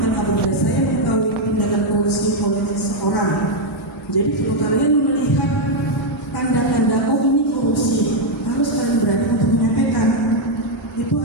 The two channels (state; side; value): normal; both; correlation 0.00